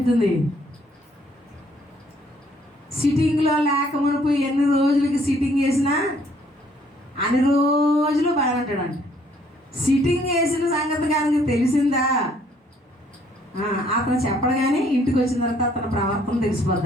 సిట్టింగ్లో లేక మునుపు ఎన్ని రోజులకి సిట్టింగ్ వేసినా అన్ని రోజులు బాగుంటాడంట. సిట్టింగ్ వేసిన సంగతి కానీ తెలిసిందా, అతను చెప్పడు కానీ ఇంటికి వచ్చిన తర్వాత అతని ప్రవర్తన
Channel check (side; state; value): both; normal; correlation 0.64